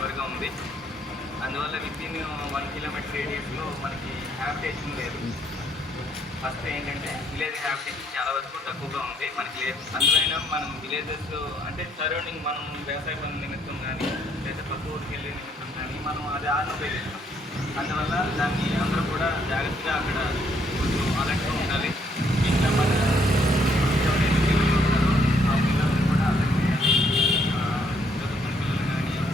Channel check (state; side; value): normal; both; correlation 0.70